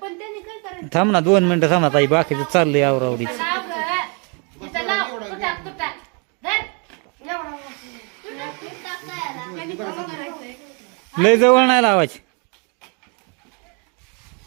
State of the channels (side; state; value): left; quieter; 35.2 dB